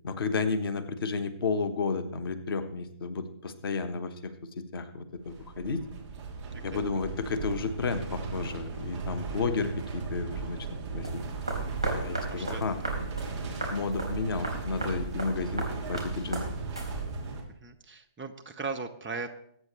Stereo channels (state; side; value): inverted; both; correlation -0.53